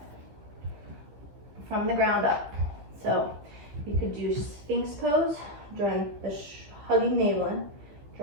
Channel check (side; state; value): left; late; 15 ms